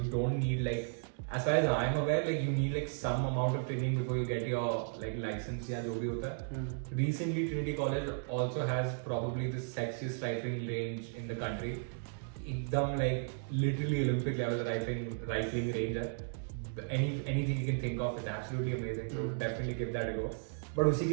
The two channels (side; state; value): left; silent; digital silence